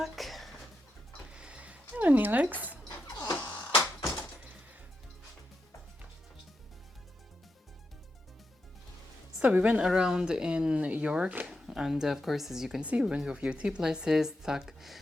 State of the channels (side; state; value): both; normal; correlation 0.86